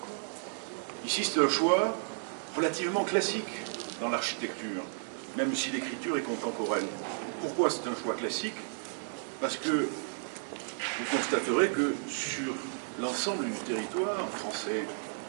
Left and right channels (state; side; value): silent; left; digital silence